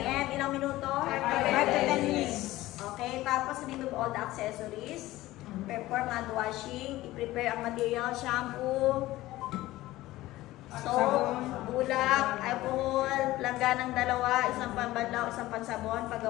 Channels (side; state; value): right; quieter; 17.0 dB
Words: Ilang minuto? 5 to 10 minutes. Okay, tapos remove all the accessories. Perform hand washing. I-prepare ang material, shampoo, soap, bulak, alcohol, langganang dalawa, isang pambanlaw, isang pansabon,